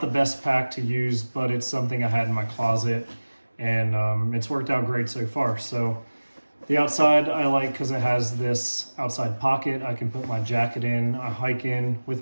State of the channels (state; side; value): inverted; both; correlation -1.00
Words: the best pack to use, but it's something I had in my closet, and it's worked out great so far. So the outside I like because it has this outside pocket. I can put my jacket in, I hike in